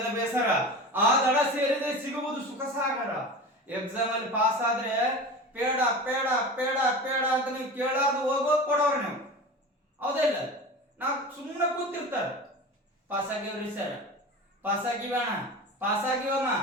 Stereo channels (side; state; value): both; normal; correlation 0.32